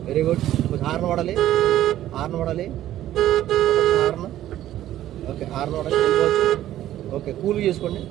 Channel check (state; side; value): quieter; left; 13.1 dB